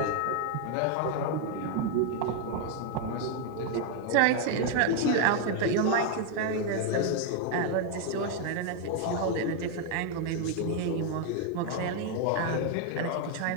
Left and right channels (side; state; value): both; different; correlation 0.01